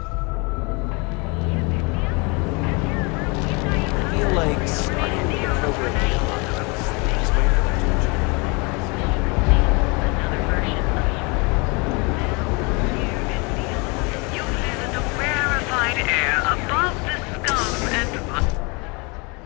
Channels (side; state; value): right; quieter; 29.8 dB